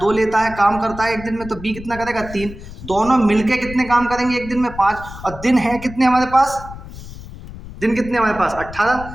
लेता है, काम करता है 1 दिन में, तो बी कितना करेगा 3, दोनों मिलके कितने काम करेंगे 1 दिन में, 5, और दिन है कितने हमारे पास, दिन कितने हमारे पास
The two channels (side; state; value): left; noise; rumble, 14 dB below the sound